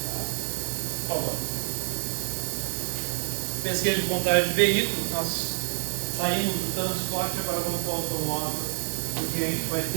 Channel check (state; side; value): silent; left; digital silence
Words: Tá? Por favor. Pesquisa de contagem de veículos, nós saímos do transporte, agora vamos para o automóvel, porque a gente vai